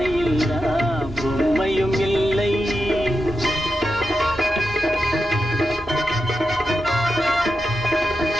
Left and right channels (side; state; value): both; normal; correlation 0.89